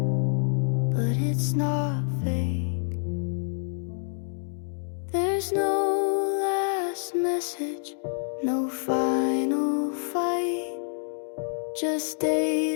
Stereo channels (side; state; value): right; silent; digital silence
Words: but it's not fake. There's no last message, no final fight. Just